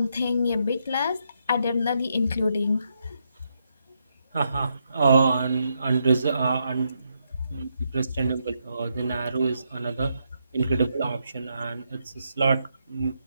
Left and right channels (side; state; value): both; inverted; correlation -0.80